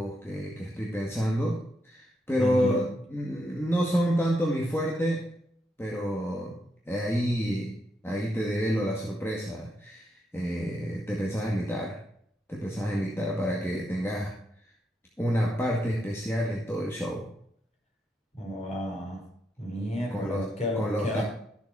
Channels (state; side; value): normal; both; correlation 0.81